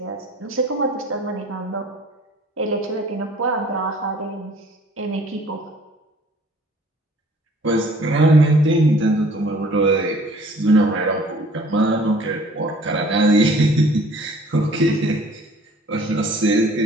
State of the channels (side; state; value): both; normal; correlation 0.53